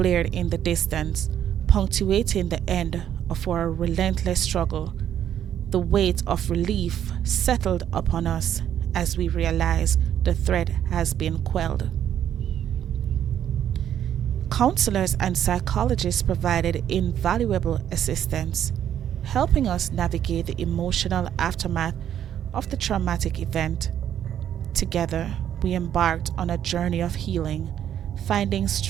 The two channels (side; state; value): left; quieter; 10.2 dB